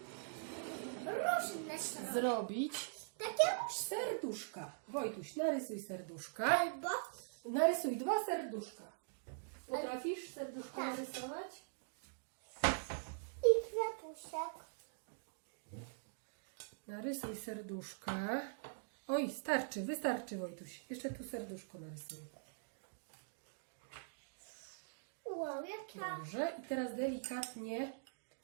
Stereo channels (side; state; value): left; silent; digital silence